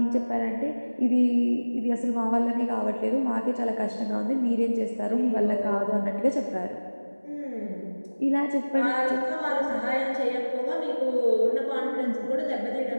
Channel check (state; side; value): inverted; both; correlation -1.00